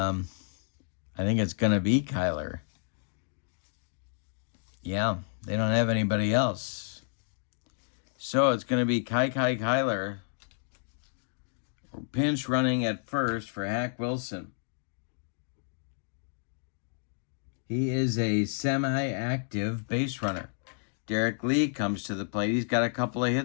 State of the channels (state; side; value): silent; right; digital silence